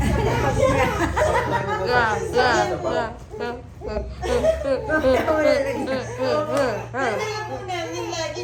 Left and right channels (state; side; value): identical; both; correlation 1.00